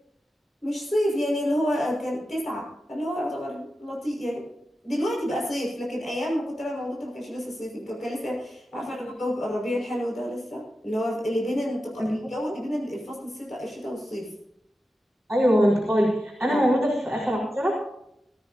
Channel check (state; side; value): normal; both; correlation 0.91